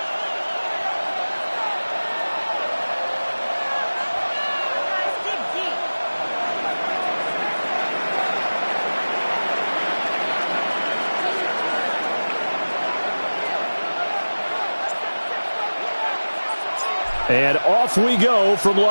And off we go from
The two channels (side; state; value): both; inverted; correlation -1.00